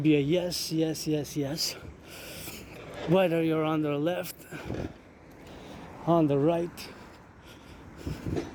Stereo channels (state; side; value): identical; both; correlation 1.00